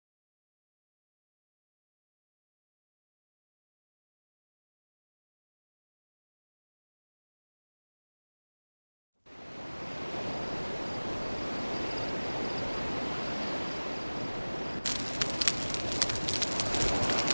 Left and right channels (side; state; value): both; inverted; correlation -1.00